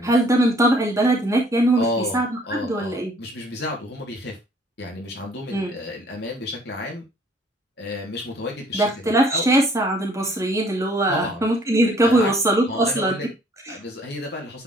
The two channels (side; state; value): both; normal; correlation 0.59